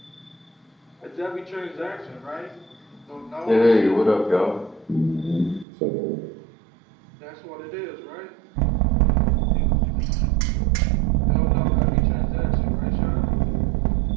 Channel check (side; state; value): left; drops out; at 5.7 s